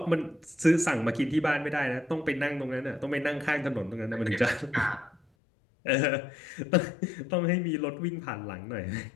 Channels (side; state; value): right; drops out; at 5.2 s